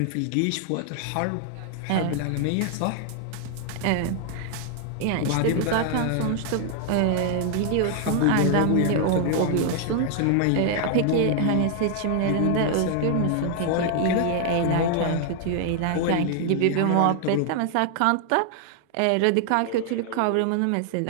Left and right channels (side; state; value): both; different; correlation 0.00